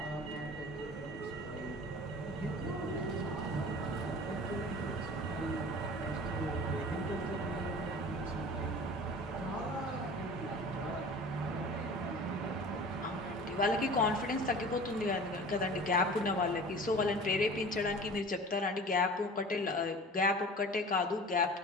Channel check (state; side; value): normal; both; correlation 0.40